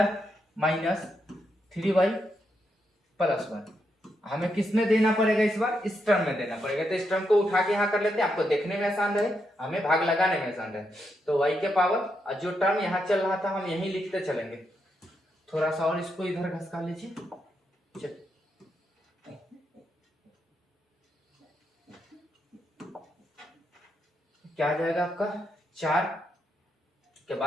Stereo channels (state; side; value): normal; both; correlation 0.82